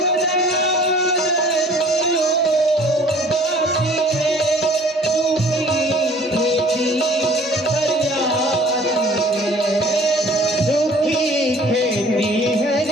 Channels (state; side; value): normal; both; correlation 0.51